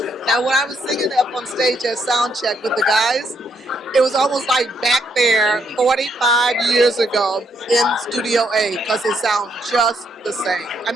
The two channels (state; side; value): normal; both; correlation 0.74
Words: Now when I was singing up on stage at sound check with the guys, it was almost like back there 45 years ago in Studio A because it sounds just the same. I